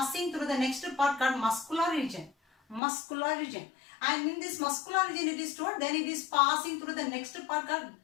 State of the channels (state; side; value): drops out; right; at 2.8 s